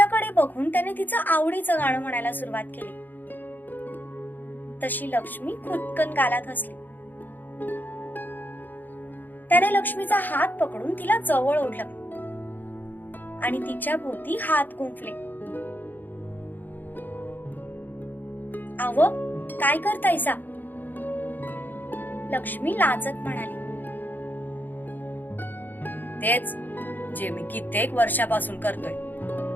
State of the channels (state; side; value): late; right; 0.088 ms